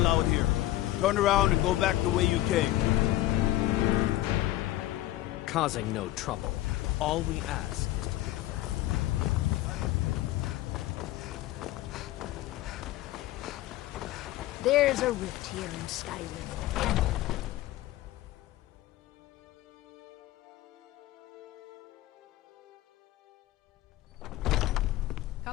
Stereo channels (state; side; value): quieter; right; 15.6 dB